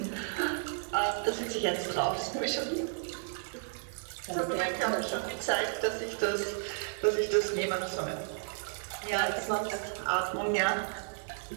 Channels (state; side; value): silent; left; digital silence